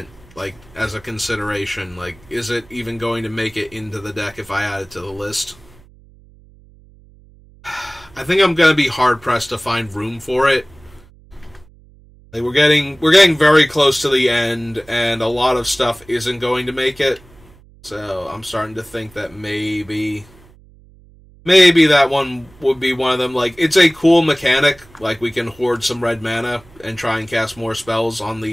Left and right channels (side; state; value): right; noise; hum, 26 dB below the sound